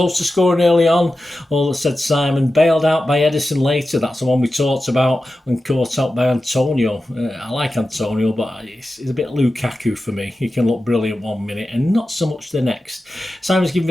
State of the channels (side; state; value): both; normal; correlation 0.93